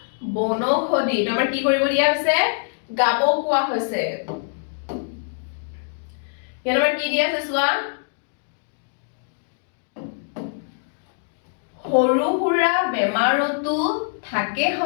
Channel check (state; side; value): silent; right; digital silence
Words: বনৌষধি তোমাৰ কি কৰিব দিয়া আছে গাব কোৱা হৈছে ইয়াত আমাৰ কি দিয়া আছে চোৱা সৰু সুৰা বেমাৰতো থাকে